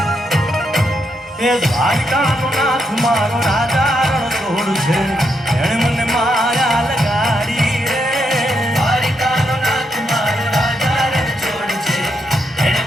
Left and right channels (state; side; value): normal; both; correlation 0.80